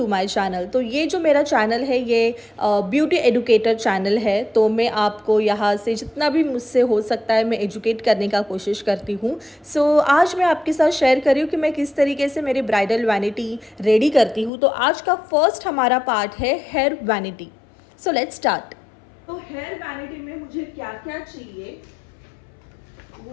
my channel. तो ये जो मेरा चैनल है ये ब्यूटी एडुकेटर चैनल है। तो मैं आपको यहाँ से जितना भी मुझसे हो सकता है मैं एजुकेट करने का कोशिश करती हूँ। सो आज मैं आपके साथ शेयर कर रही हूँ कि मैं किस तरीके से मेरी ब्राइडल वैनिटी रेडी करती हूँ। तो आज का फर्स्ट हमारा पार्ट है hair vanity. So let's start. तो हेयर वैनिटी में मुझे क्या क्या चाहिए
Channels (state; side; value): drops out; right; at 14.5 s